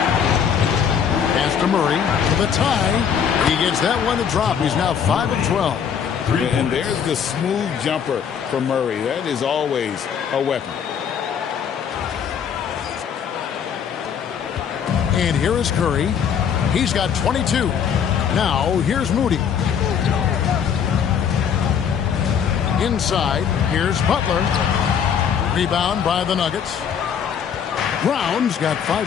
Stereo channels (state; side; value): quieter; right; 7.7 dB